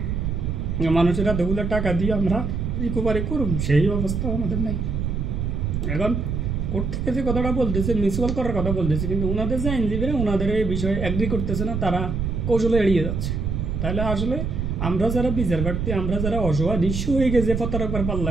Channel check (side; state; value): right; noise; rumble, 2 dB below the sound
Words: মানুষেরা দেগুলো টাকা দিয়ে আমরা রিকভারি করুন, সেই অবস্থা আমাদের নাই। এখন কোর্ট থেকে যে কথাটা বলতেছে মিউচুয়াল করার কথা বলতেছে, কিন্তু ওনাদের যে আইনজীবীরা ওনাদের এই বিষয়ে অ্যাগ্রি করতেছে না, তারা কৌশলে এড়িয়ে যাচ্ছে। তাহলে আসলে আমরা যারা বিচার প্রার্থী, আমরা যারা অসহায় নিঃস্ব হয়ে গেছে প্রতারকের